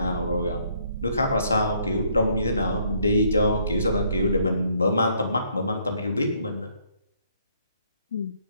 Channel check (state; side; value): inverted; both; correlation -0.68